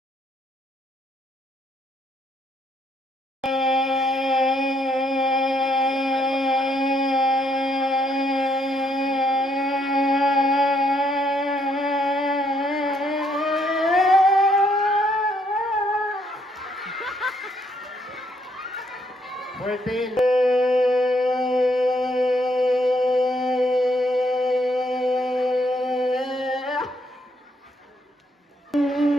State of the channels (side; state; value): both; normal; correlation 0.72